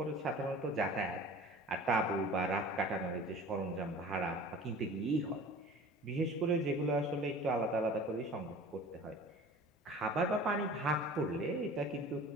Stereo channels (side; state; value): both; normal; correlation 0.42